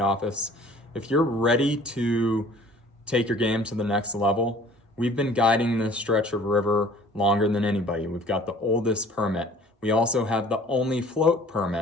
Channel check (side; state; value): both; normal; correlation 0.51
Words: If you're ready to take your game to the next level, we've been guiding this stretch of river longer than anybody. We've got the oldest permit. We also have the only float